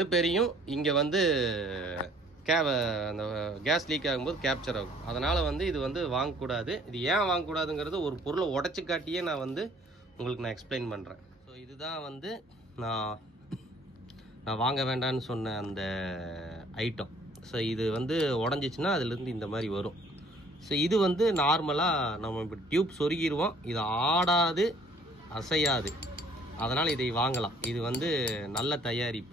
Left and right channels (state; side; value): normal; both; correlation 0.58